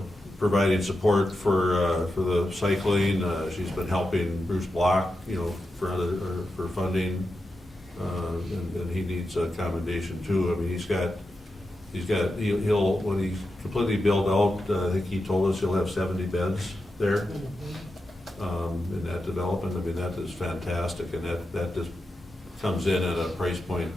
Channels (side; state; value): both; normal; correlation 0.89